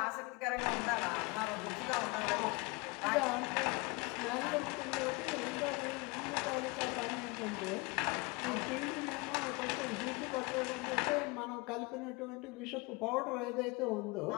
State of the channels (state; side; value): quieter; right; 26.4 dB